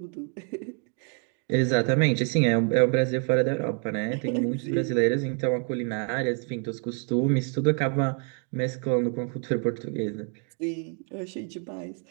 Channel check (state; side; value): quieter; left; 39.0 dB